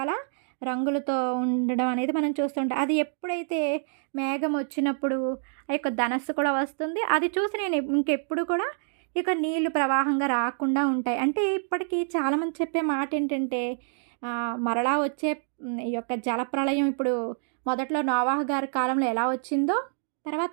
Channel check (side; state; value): left; silent; digital silence